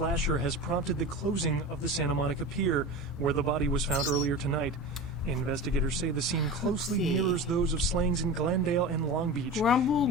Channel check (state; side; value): normal; both; correlation 0.30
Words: has prompted the closing of the Santa Monica Pier, where the body was found earlier tonight. Investigators say the scene closely mirrors those of slayings in Glendale and Long Beach. Grumble,